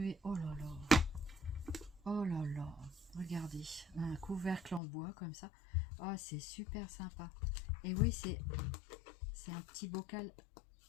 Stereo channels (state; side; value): drops out; right; at 4.8 s